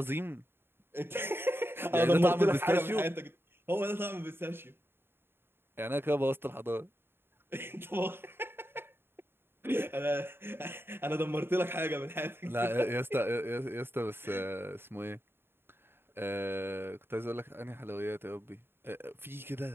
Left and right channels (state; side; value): late; left; 0.11 ms